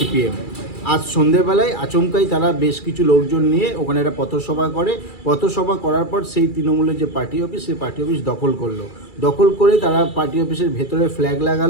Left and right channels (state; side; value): late; right; 2.3 ms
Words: আজ সন্ধেবেলায় আচমকাই তারা বেশ কিছু লোকজন নিয়ে ওখানে একটা পথসভা করে। পথসভা করার পর সেই তৃণমূলের যে পার্টি অফিস সেই পার্টি অফিস দখল করলো। দখল করে তারা পার্টি অফিসের ভেতরে ফ্ল্যাগ